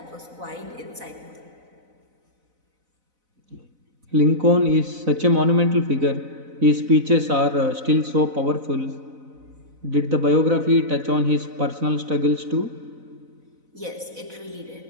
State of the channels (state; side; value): late; left; 4.0 ms